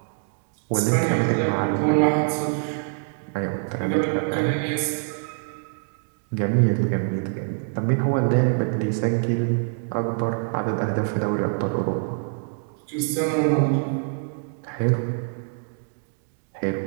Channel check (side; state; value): left; silent; 62 dB below the other